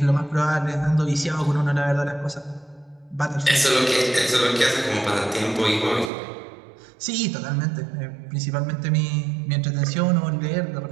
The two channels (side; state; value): left; drops out; at 6.1 s